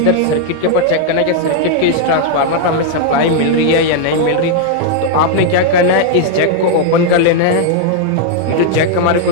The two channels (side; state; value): both; different; correlation 0.00